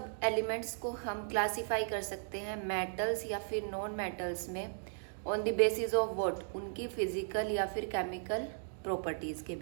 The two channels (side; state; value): left; silent; digital silence